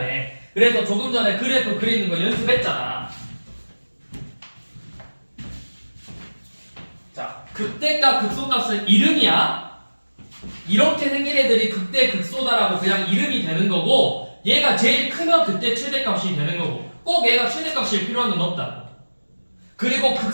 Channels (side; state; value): both; inverted; correlation -1.00